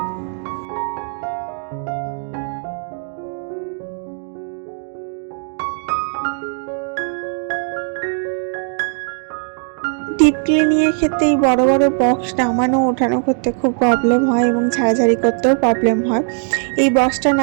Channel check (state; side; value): silent; left; 57 dB below the other